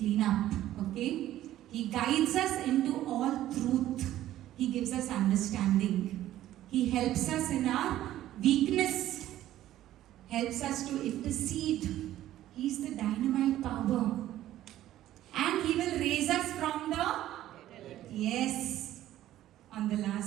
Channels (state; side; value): quieter; left; 13.5 dB